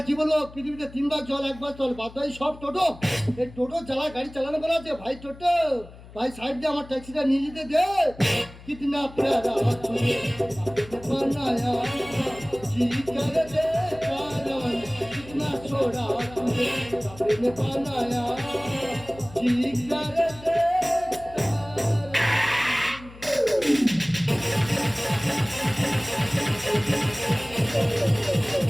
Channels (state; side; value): noise; left; hum, 19 dB below the sound